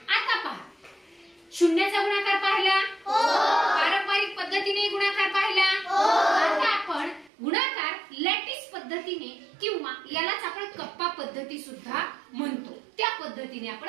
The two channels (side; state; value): left; drops out; at 7.3 s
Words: आता पहा शून्याचा गुणाकार पाहिला, पारंपरिक पद्धतीने गुणाकार पाहिला. आता आपण गुणाकार लॅटिस पद्धतीने किंवा यालाच आपण कप्पा पद्धती सुद्धा म्हणतो त्या पद्धतीने